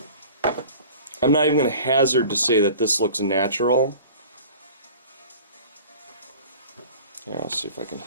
I'm not even going to hazard to say that this looks natural. Yeah, I'll see if I can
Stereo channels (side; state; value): both; inverted; correlation -0.42